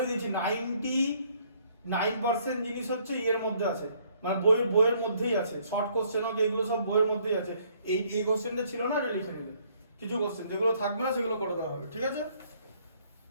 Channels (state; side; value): inverted; both; correlation -0.65